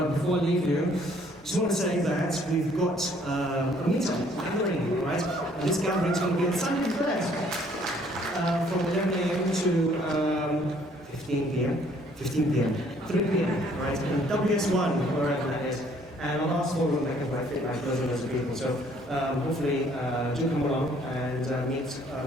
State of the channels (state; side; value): normal; both; correlation 0.62